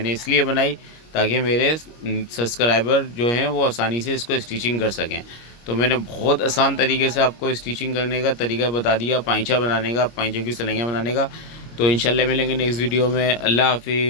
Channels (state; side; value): late; right; 25 ms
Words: इसलिए बनाई ताकि मेरे सब्सक्राइबर जो हैं वो आसानी से इसको स्टिचिंग कर सकें। तो मैंने बहुत आसान तरीके से आपको स्टिचिंग करने का तरीका बता दिया, पाइचा बनाने का, पाइचे की सिलाइयाँ बनाने का। तो इंशाल्लाह मिलेंगे नेक्स्ट वीडियो में। अल्लाह